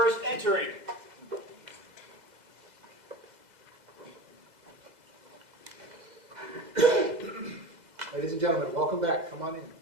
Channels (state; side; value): late; left; 2.0 ms